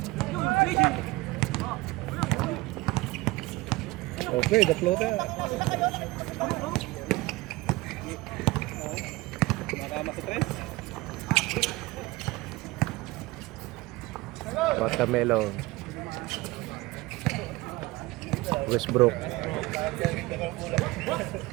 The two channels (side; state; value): left; quieter; 20.8 dB